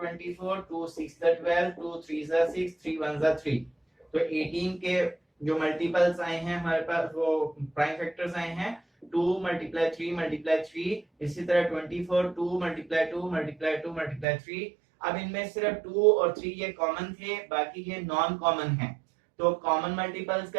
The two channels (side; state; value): left; drops out; at 14.2 s